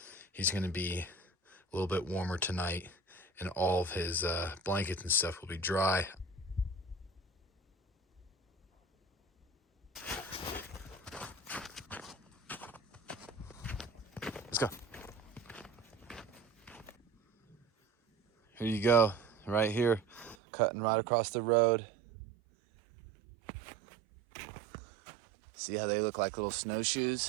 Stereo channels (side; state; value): left; drops out; at 20.4 s